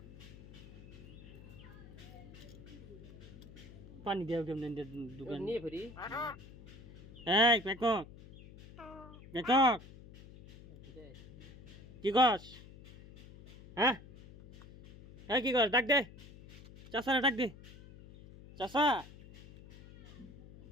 পানি দেও কেমন দোকান নিয়ে ফেরি এই পেকক পেকক কি কস? হ্যাঁ হ্যাঁ কি কস? ডাক দে চাষা, ডাক দে চাষা,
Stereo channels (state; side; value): noise; left; hum, 18 dB below the sound